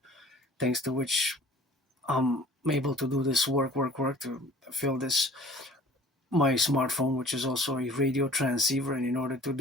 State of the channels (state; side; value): normal; both; correlation 0.50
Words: thanks to which I'm able to do this work to fill this my smartphone, which is also a radio transceiver. And in order to